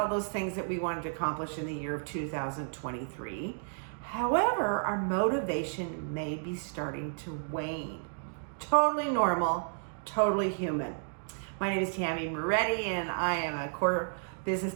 those things that we wanted to accomplish in the year of 2023. However, our motivation may be starting to wane. Totally normal, totally human. My name is Tammy Moretti and I am a core business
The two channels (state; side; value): silent; left; digital silence